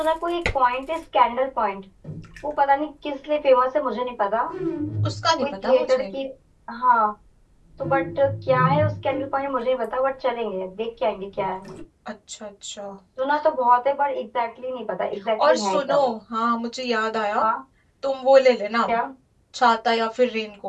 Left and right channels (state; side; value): identical; both; correlation 1.00